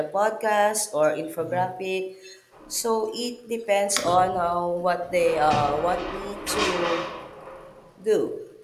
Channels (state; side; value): identical; both; correlation 1.00